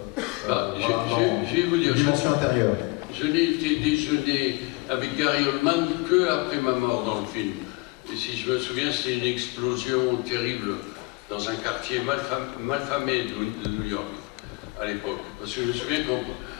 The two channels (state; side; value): quieter; right; 26.0 dB